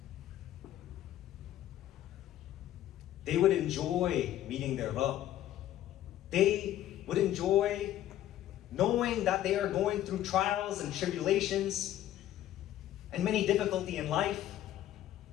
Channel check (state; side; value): quieter; right; 12.7 dB